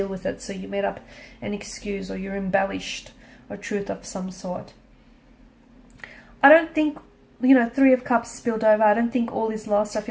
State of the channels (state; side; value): identical; both; correlation 1.00